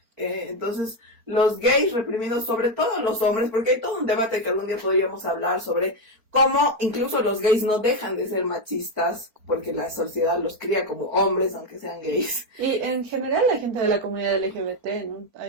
Entonces, los gays reprimidos, sobre todo los hombres, porque hay todo un debate que algún día podríamos hablar sobre cómo incluso los gays no dejan de ser machistas, porque la sociedad los cría como hombres, aunque sean gays. Y en general la gente de la comunidad LGBT, ¿no?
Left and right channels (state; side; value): late; left; 4.4 ms